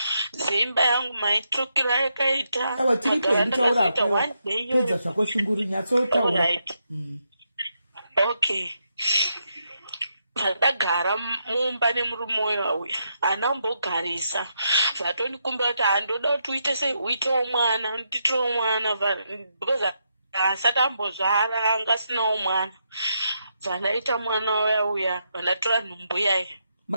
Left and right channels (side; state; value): both; inverted; correlation -0.81